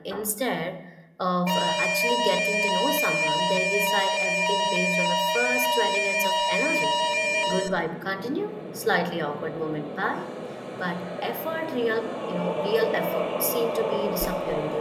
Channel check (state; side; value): identical; both; correlation 1.00